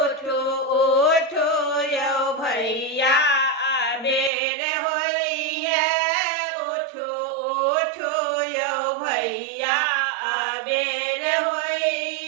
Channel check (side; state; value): left; drops out; at 4.3 s